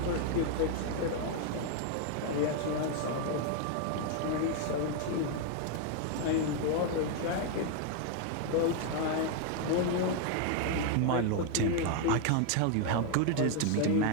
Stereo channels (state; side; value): different; both; correlation 0.00